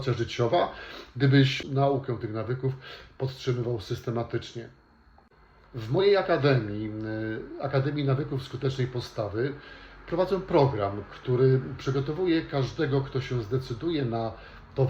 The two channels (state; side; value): identical; both; correlation 1.00